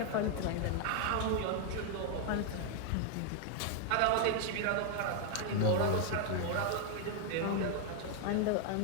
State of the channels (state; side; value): different; both; correlation 0.00